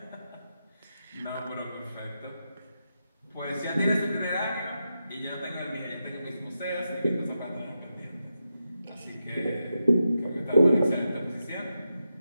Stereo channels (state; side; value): inverted; both; correlation -0.87